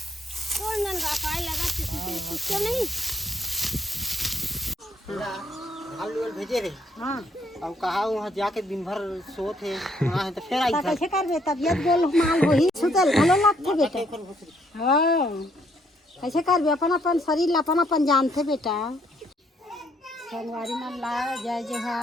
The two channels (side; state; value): both; normal; correlation 0.69